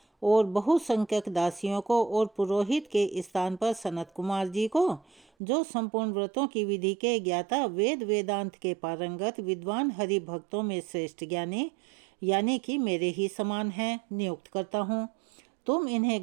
और बहुसंख्यक दासियों को और पुरोहित के स्थान पर सनत कुमार जी को, जो संपूर्ण व्रतों की विधि के ज्ञाता, वेद वेदांत के पारंगत, विद्वान हरि भक्तों में श्रेष्ठ ज्ञानी यानी कि मेरे ही समान हैं, नियुक्त करता हूँ। तुम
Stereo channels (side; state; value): left; drops out; at 5.2 s